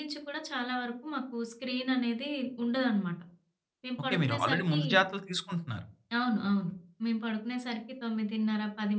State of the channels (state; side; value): identical; both; correlation 1.00